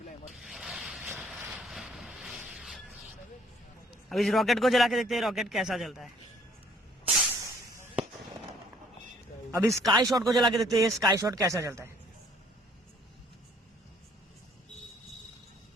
अब इस रॉकेट को जला के देखते हैं रॉकेट कैसा चलता है। अब इस स्काई शॉट को जला के देखते हैं स्काई शॉट कैसा चलता है।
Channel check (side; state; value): both; normal; correlation 0.59